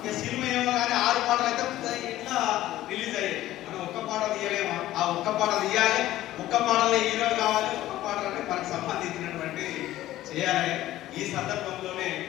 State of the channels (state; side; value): quieter; right; 14.7 dB